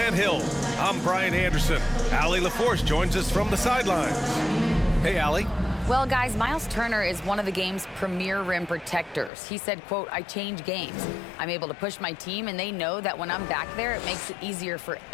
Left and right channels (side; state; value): right; drops out; at 9.3 s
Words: Hill, I'm Brian Anderson. Allie LaForce joins us from the sidelines. Hey, Allie. Well, guys, Miles Turner is one of the game's premier rim protectors. He said, quote, "I change games. I'm able to push my team, and they know that when I'm back there, it makes it easier for